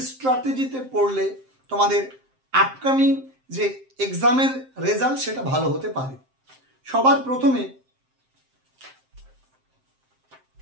স্ট্র্যাটেজিতে পড়লে তোমাদের আপকামিং যে এক্সামের রেজাল্ট সেটা ভালো হতে পারে। সবার প্রথমে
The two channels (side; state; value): left; late; 7.6 ms